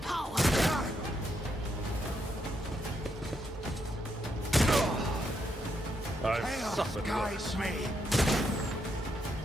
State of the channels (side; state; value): both; normal; correlation 0.78